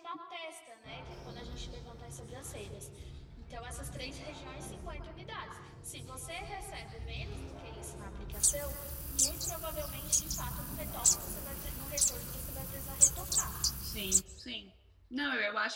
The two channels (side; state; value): both; identical; correlation 1.00